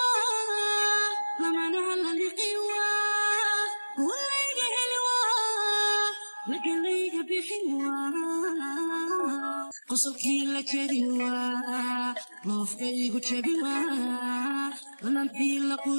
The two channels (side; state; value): both; inverted; correlation -1.00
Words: lamanaha laliqiwa duwalayga heliwa lagalayga bixiwa qosolkii la jariwa loofkaygu jabiwa lanantii la